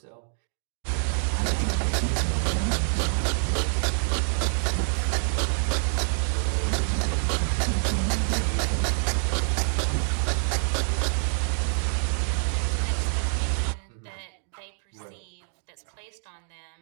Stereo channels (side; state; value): left; silent; 61 dB below the other